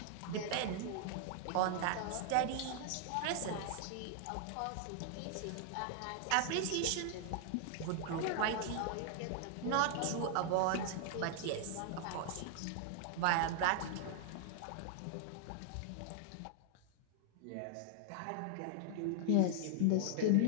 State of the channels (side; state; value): both; different; correlation 0.00